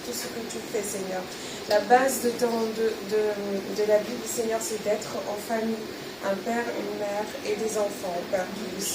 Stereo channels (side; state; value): both; identical; correlation 1.00